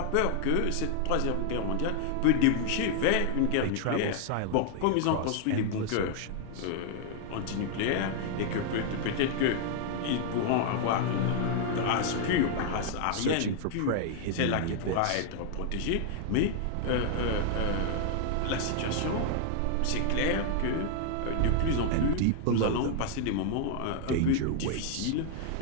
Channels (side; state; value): both; different; correlation 0.00